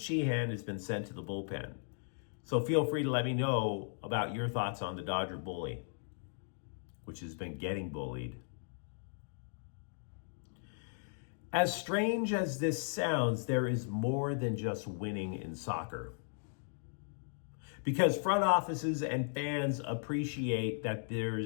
has been sent to the bullpen. So feel free to let me know about your thoughts on the Dodger bully, which has been getting bullied. As strange as this sounds, there is more than just winning in soccer. Because front offices and fans appreciate that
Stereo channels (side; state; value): right; silent; digital silence